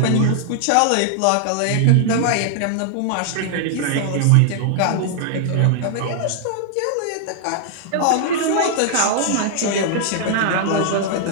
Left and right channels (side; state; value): both; different; correlation -0.01